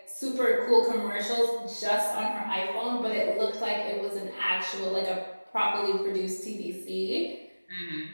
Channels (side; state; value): both; inverted; correlation -1.00